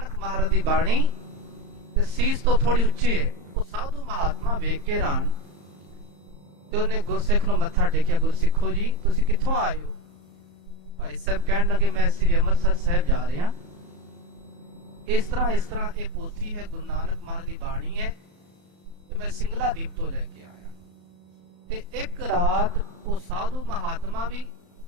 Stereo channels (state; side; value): late; left; 34 ms